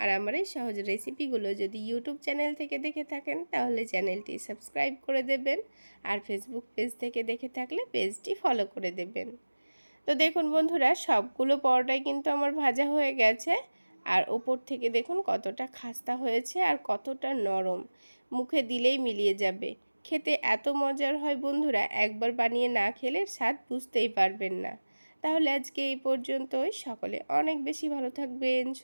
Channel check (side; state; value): both; inverted; correlation -1.00